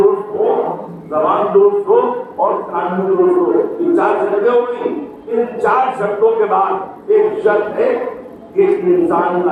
ہو، زبان درست ہو اور کان بھی درست ہو، یہ 4 شرطیں ہو گئی۔ ان 4 شرطوں کے بعد ایک شرط ہے کہ انسان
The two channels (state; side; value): identical; both; correlation 1.00